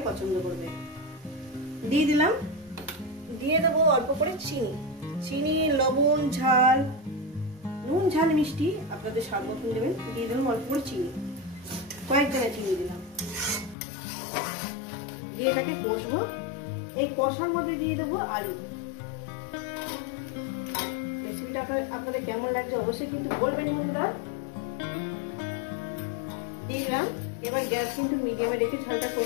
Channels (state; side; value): drops out; right; at 13.8 s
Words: পছন্দ করবে। দিয়ে দিলাম, দিয়ে দেবো অল্প করে চিনি। চিনি, লবণ, ঝাল, নুন ঝাল মিষ্টি আপনাদের স্বাদ মতন দেবেন। দিয়ে দিলাম অল্প করে চিনি, কয়েক জায়গায় চিনি দিলাম। দিয়ে এটাকে কষবো। এই কষার মধ্যে দিয়ে দেবো আলু। রেসিপিটা আপনাদের কেমন লাগছে অবশ্যই কিন্তু বলবেন বন্ধুরা। দিয়ে দিলাম। এবার গ্যাস কিন্তু মিডিয়ামে রেখে ঝালটা